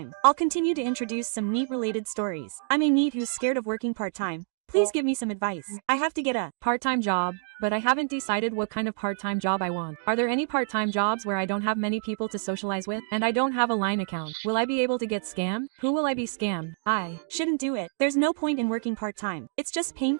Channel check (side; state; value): left; silent; digital silence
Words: I'll continue to introduce some NEET-related stories. I'm a NEET who's scared of working part-time. Please give me some advice. I have to get a part-time job, but I haven't decided what kind of part-time job I want. Are there any part-time jobs where I don't have many people to socialize with, and I don't have a line account? Will I be able to get scammed? Who will I be scammed? I shouldn't do it. There's no point in working part-time. It's just